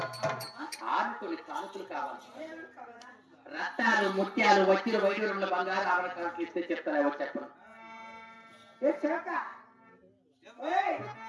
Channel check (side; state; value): both; identical; correlation 1.00